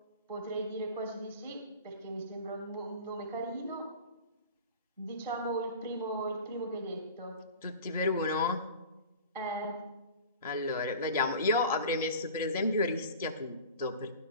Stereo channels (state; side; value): inverted; both; correlation -0.37